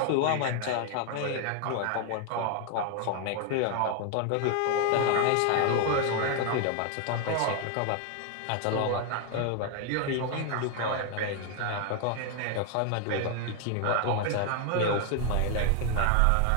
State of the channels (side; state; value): both; different; correlation 0.00